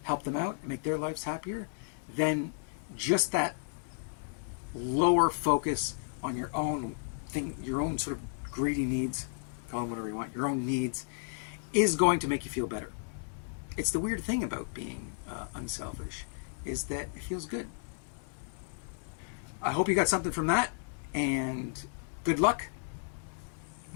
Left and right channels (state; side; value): silent; right; digital silence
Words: help them out and make their lives happier, then just that lower focus on your own thing, your own sort of greedy needs, call them whatever you want, your own needs, is going to make you feel better. It's the weird thing about being unselfish, is that it feels good. I hope you got something from that, and good luck.